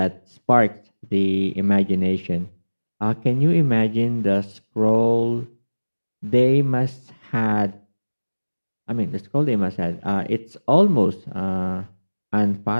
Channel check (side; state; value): both; inverted; correlation -1.00